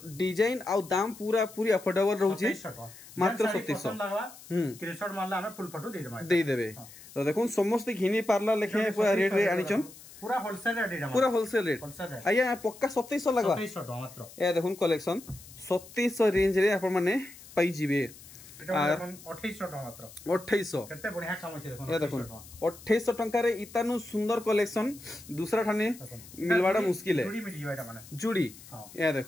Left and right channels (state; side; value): noise; left; hiss, 19 dB below the sound